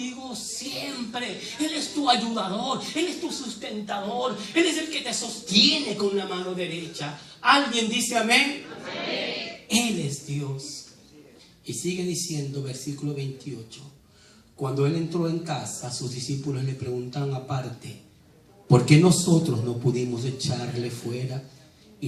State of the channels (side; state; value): both; identical; correlation 1.00